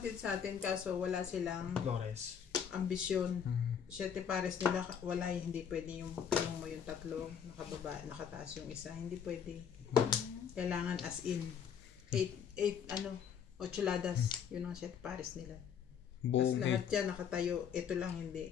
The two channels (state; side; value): quieter; right; 7.7 dB